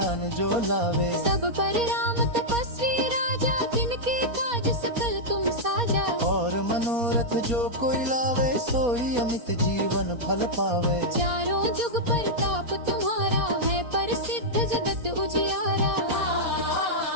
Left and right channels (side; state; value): left; late; 4.2 ms